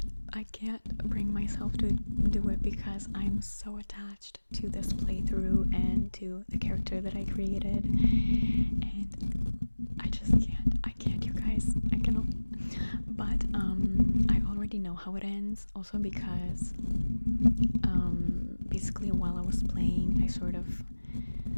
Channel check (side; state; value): both; inverted; correlation -1.00